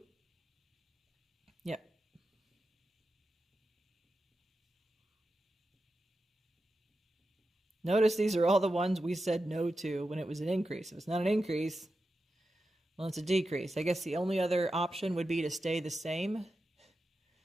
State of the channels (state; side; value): normal; both; correlation 0.90